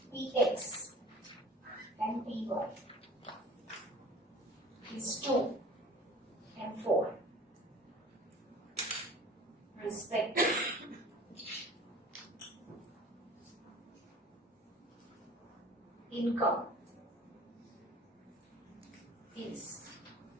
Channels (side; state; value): both; normal; correlation 0.44